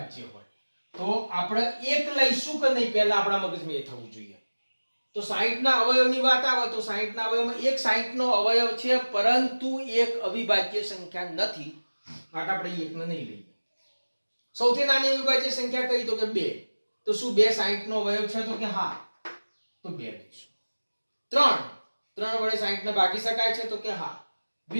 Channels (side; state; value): both; inverted; correlation -1.00